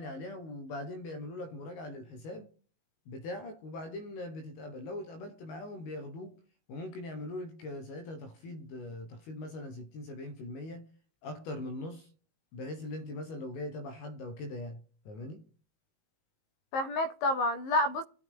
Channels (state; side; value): late; right; 19 ms